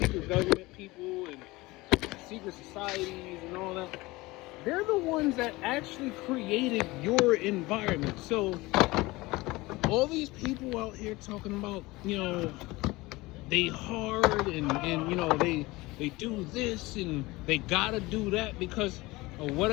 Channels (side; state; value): right; quieter; 21.2 dB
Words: government people and secret societies and all that, they're the ones that actually created your environment. So all these people out here talking about, they hard and they do this and they gotta do that because of